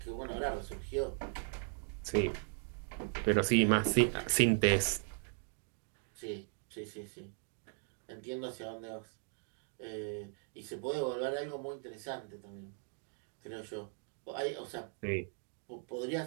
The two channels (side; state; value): left; silent; 52 dB below the other